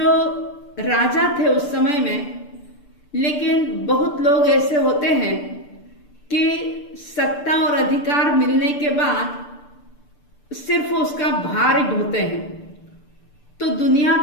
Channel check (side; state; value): right; late; 6.8 ms